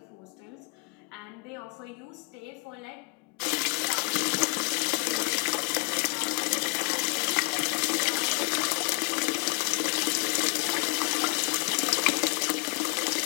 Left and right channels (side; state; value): right; quieter; 34.2 dB